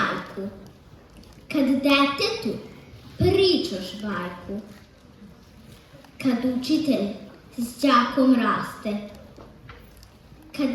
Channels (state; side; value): identical; both; correlation 1.00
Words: kad detetu pričaš bajku, kad učitelj s đakom raste,